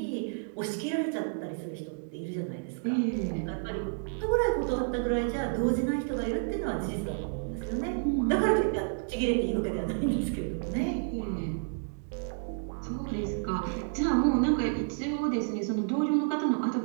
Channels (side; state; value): left; silent; digital silence